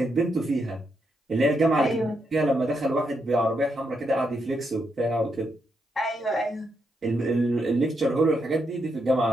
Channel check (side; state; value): both; normal; correlation 0.80